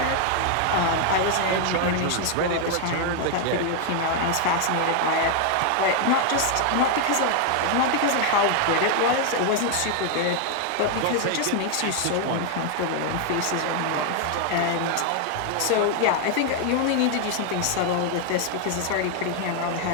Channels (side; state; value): both; different; correlation 0.00